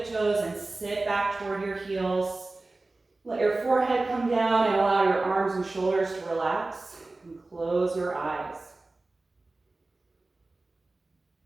and sit back toward your heels. Let your forehead come down and allow your arms and shoulders to relax, and close your eyes.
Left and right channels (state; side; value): quieter; left; 3.2 dB